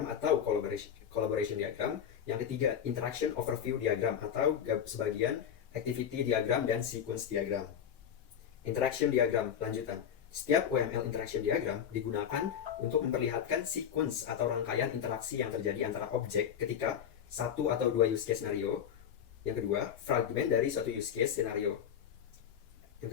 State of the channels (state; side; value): quieter; right; 8.7 dB